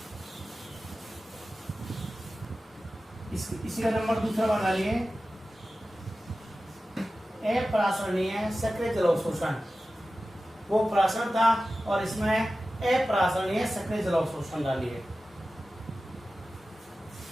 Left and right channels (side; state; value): both; normal; correlation 0.95